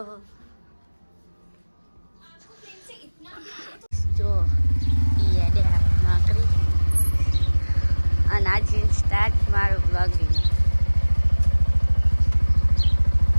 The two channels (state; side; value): inverted; both; correlation -1.00